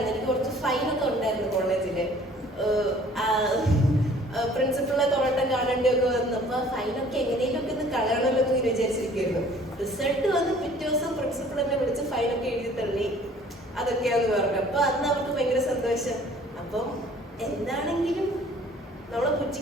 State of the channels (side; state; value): both; normal; correlation 0.53